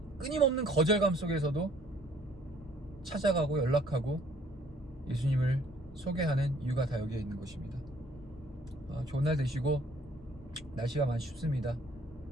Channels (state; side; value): normal; both; correlation 0.60